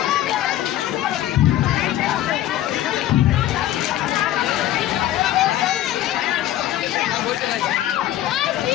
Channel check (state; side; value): quieter; right; 13.2 dB